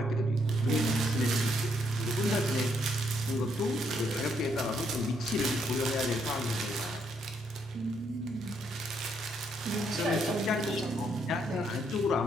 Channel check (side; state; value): both; normal; correlation 0.74